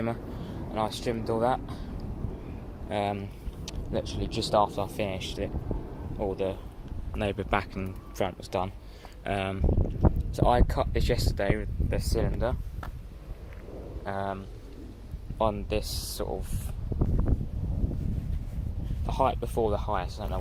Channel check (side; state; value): both; identical; correlation 1.00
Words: and I trimmed all that. Literally just after I finished it, all the neighbour back and front was done. So I cut this yesterday with the cylinder on this sort of the height before the highest. I don't know